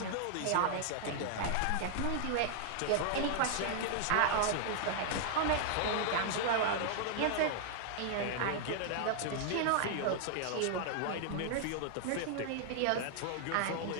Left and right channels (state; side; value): different; both; correlation -0.01